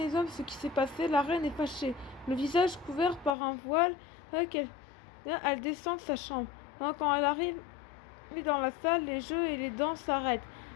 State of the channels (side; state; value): right; drops out; at 3.4 s